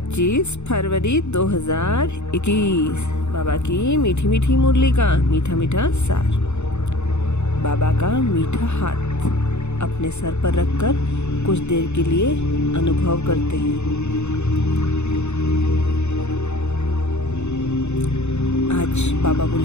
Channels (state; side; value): late; right; 0.82 ms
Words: फरवरी 2021 बाबा की मीठी मीठी मुरली का मीठा मीठा सार। बाबा का मीठा हाथ अपने सर पर रखकर कुछ देर के लिए अनुभव करते हैं। आज बाबा